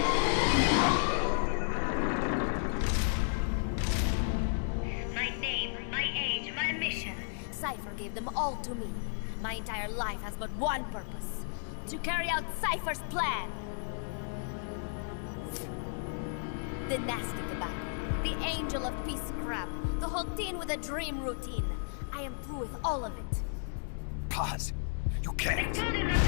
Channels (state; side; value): silent; right; digital silence